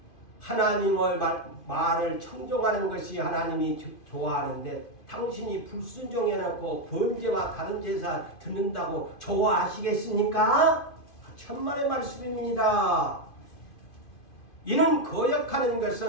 하나님의 말을 청종하는 것이 하나님이 좋아하는데 당신이 불순종해놓고 번제와 다른 제사 드는다고 좋아하시겠습니까? 천만의 말씀입니다. 이는 거역하는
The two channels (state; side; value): late; right; 2.5 ms